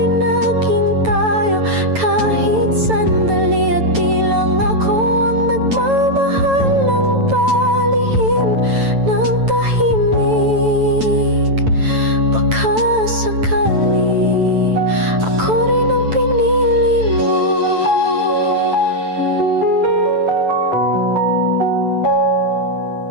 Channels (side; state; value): left; late; 9.1 ms